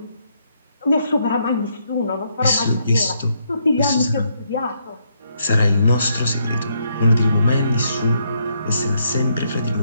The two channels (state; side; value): inverted; both; correlation -0.75